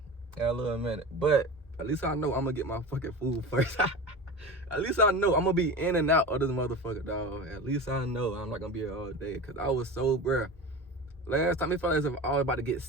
But at least I know I'm gonna get my fucking food first. At least I know I'm gonna be in and out of this motherfucker, dog. At least I know I'm not gonna be here all day. Cause I was so, bruh. Last time it felt as if I was about to get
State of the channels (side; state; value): both; normal; correlation 0.30